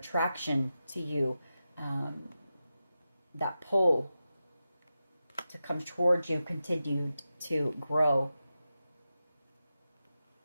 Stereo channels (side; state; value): both; inverted; correlation -0.92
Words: to you, that pull to come towards you, continued to grow.